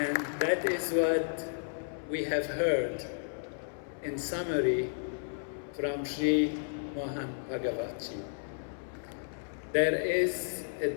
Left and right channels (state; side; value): silent; right; 56 dB below the other